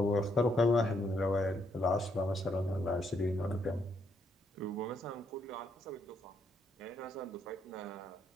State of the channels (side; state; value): both; normal; correlation 0.74